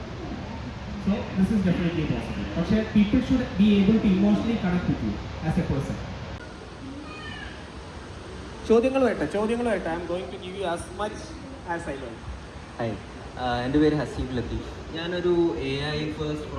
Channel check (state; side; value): identical; both; correlation 1.00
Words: So this is definitely possible. But people should be able to emotionally connect with you as a person. ചോദ്യങ്ങൾ വരട്ടെ. I'm going to give you as much as I learn. എൻ്റെ പേര് ഹസീബ് ലത്തീഫ്. ഞാനൊരു AI first